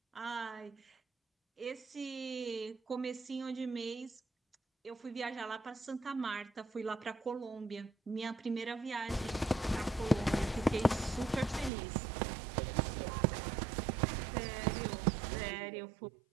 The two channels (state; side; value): drops out; left; at 11.7 s